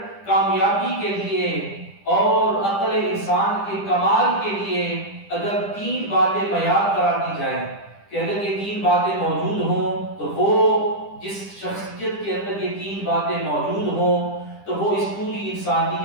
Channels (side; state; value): right; late; 10 ms